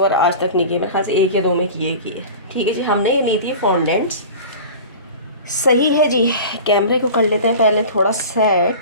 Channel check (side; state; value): both; inverted; correlation -0.36